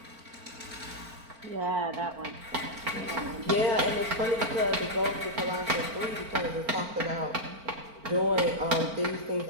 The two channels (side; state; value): left; late; 4.4 ms